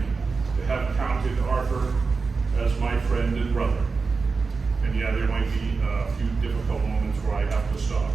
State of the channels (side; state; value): left; quieter; 4.5 dB